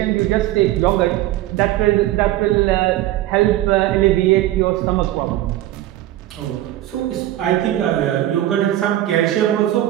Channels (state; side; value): quieter; left; 14.3 dB